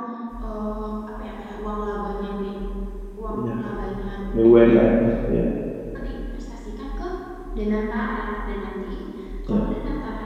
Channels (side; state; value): both; identical; correlation 1.00